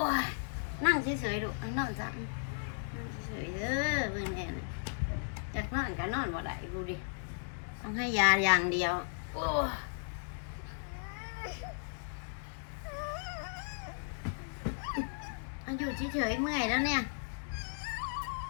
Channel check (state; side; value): silent; right; digital silence